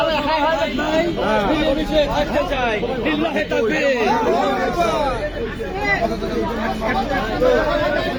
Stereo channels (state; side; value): identical; both; correlation 1.00